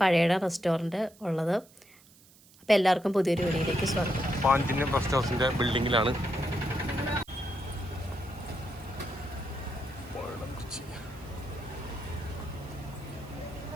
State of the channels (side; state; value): right; noise; hiss, 26 dB below the sound